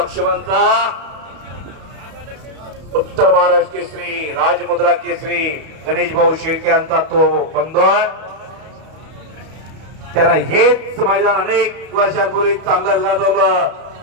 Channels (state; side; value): late; left; 32 ms